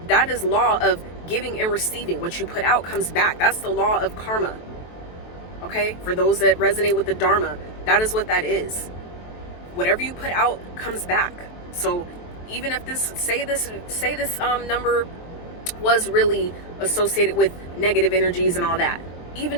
That is law of giving and receiving. What you put out comes back. That's the law of karma. Okay? For those that resonate with the Dharma, that is what that is. Whatever you put out comes back. So even if say this number was really associated with negative energies and all that,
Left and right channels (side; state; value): right; late; 23 ms